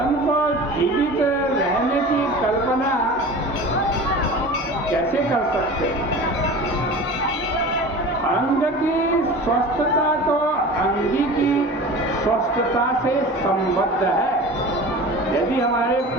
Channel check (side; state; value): both; normal; correlation 0.36